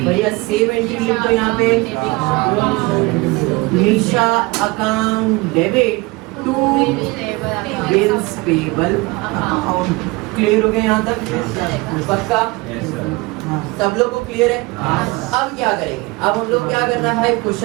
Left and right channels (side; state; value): left; quieter; 23.7 dB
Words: बढ़िया सेव एंट्री लिखो यहाँ पे, Nisha account debit to bills payable account, clear हो गया यहाँ तक? पक्का? सब लोग को क्लियर है? अब क्या करेंगे? अब हम लोग क्या करना है भाई,